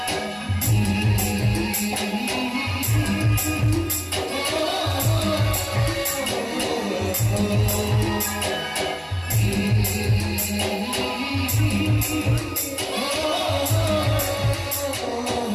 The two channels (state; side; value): identical; both; correlation 1.00